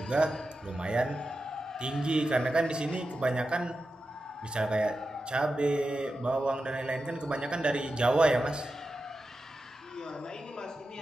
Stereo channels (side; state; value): both; normal; correlation 0.91